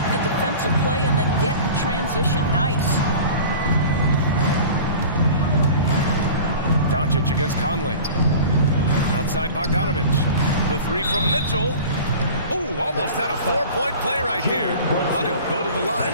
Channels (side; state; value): both; inverted; correlation -0.39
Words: the defensive play and then get in transition. Nice. Doncic against Conley. Outside Bogdanovich. The 3 from Mitchell. Ooh, almost had a 4-point play right there. But he'll go to the line